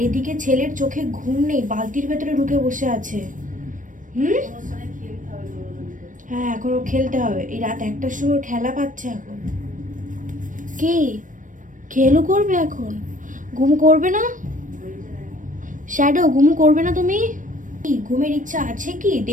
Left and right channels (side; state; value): left; late; 0.38 ms